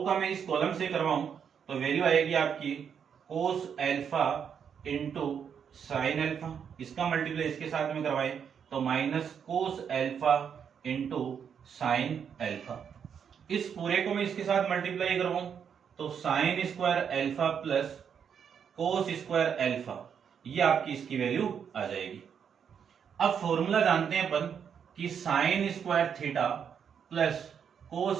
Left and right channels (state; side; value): quieter; left; 7.5 dB